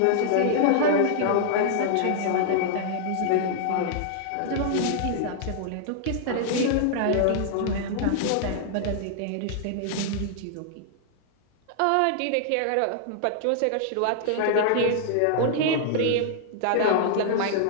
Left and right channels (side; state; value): both; different; correlation -0.01